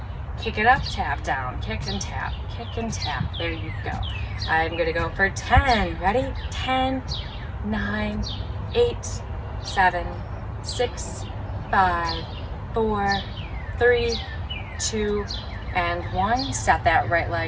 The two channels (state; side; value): identical; both; correlation 1.00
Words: kick it up, tap down, kick and tap, kick and tap. There you go. I'm going to go for 10. Ready? 10, 9, 8, 7, 6, 5, 4, 3, 2, and 1. Set that right